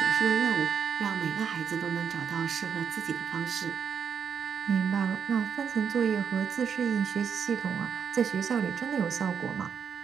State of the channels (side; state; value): left; quieter; 7.1 dB